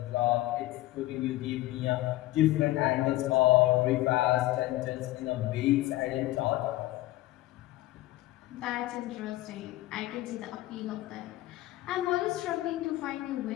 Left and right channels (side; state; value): right; quieter; 17.0 dB